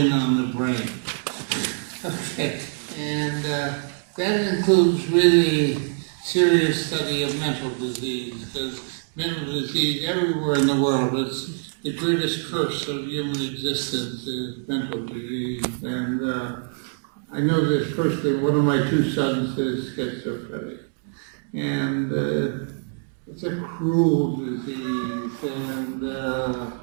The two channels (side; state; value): left; silent; digital silence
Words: on the brain. Okay, and that includes really serious study of mental disease, because mental disease everywhere in the world is the greatest curse of human existence is mental disease. And I know this personally, one of my two sons is schizophrenic. And it's a cruel disease, and